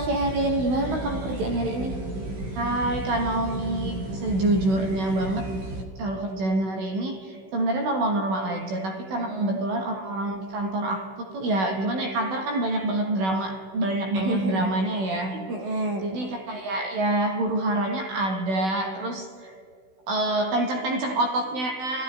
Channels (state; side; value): late; left; 16 ms